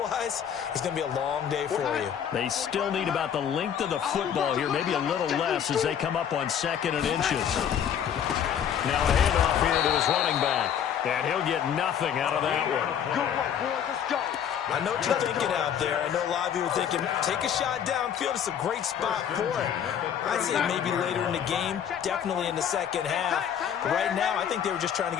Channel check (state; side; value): quieter; right; 8.7 dB